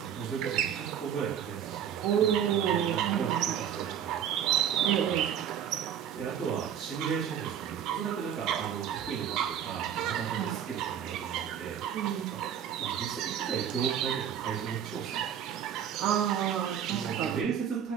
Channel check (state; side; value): quieter; left; 9.1 dB